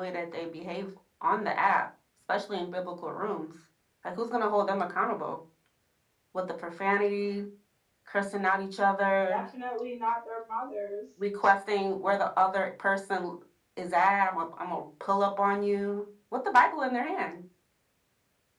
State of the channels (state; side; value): identical; both; correlation 1.00